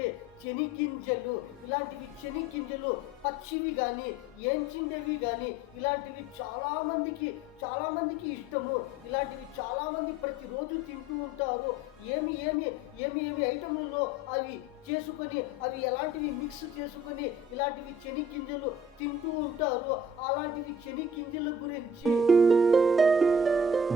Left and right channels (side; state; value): both; normal; correlation 0.49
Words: చెనిగింజలు. ఇలాంటివి చెనిగింజలు పచ్చివి కానీ ఏంచిండేవి కానీ ఇలాంటివి చాలామందికి ఇష్టము. ఇలాంటివి చాలామంది ప్రతిరోజు తింటూ ఉంటారు. ఏమి ఐటములలో అవి చేసుకొని అవి ఎలాంటివి మిక్స్ చేసుకొని ఇలాంటివి చెనిగింజలు తింటూ ఉంటారు. అలాంటివి చెనిగింజల గురించి,